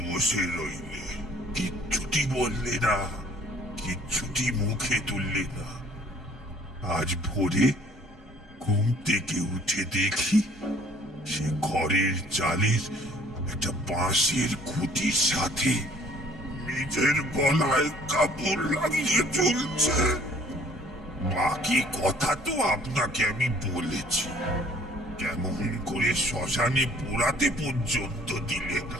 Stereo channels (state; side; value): normal; both; correlation 0.57